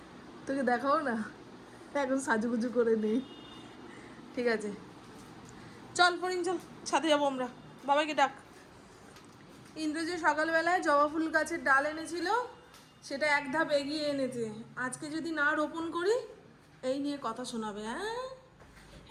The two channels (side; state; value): both; identical; correlation 1.00